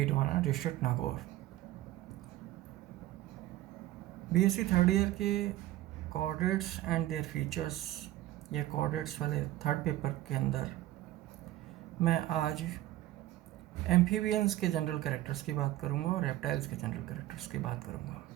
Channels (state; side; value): quieter; left; 15.1 dB